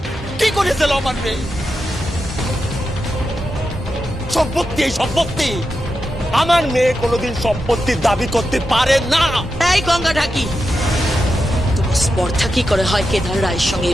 কি করেছিল আমার মেয়ে? সম্পত্তি, এই সম্পত্তি। আমার মেয়ে কোনোদিন সম্পত্তির দাবি করতে পারে না। এই গঙ্গা ঢাকি, তোমার স্পর্ধা কি করে হয় কেদার রায়ের সঙ্গে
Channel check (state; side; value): normal; both; correlation 0.88